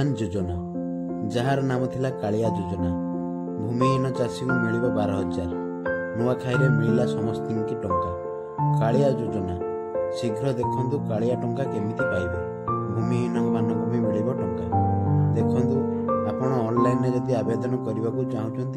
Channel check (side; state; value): both; identical; correlation 1.00